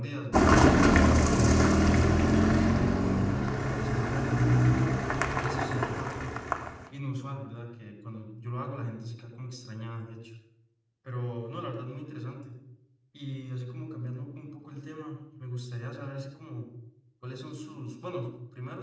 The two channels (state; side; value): identical; both; correlation 1.00